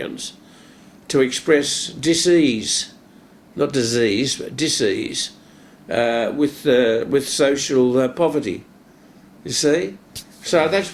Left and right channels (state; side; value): identical; both; correlation 1.00